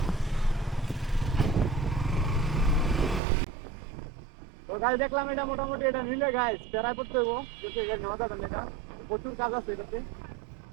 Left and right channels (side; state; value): left; drops out; at 3.2 s